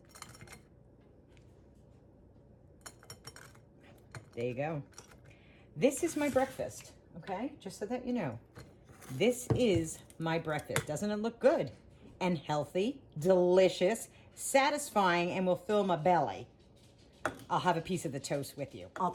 There you go. This is my breakfast, okay? Just so that you know. This is my breakfast. Doesn't it look good? And healthy, delicious, satisfying, and will fill my belly. I'll have a piece of the toast with you. I'll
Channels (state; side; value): identical; both; correlation 1.00